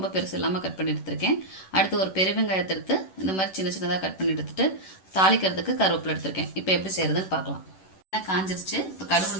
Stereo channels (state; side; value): late; right; 11 ms